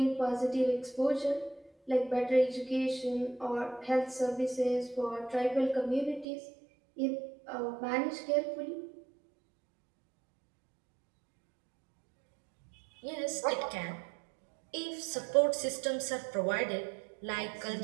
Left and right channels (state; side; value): drops out; left; at 6.2 s